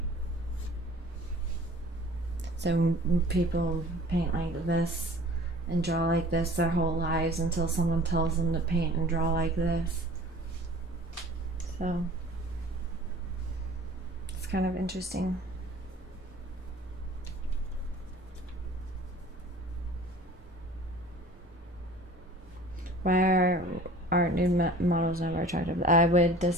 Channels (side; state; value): both; normal; correlation 0.46